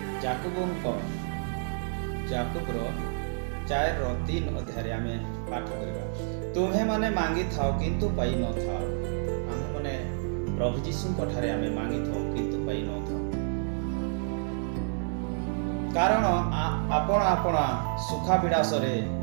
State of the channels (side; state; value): left; silent; digital silence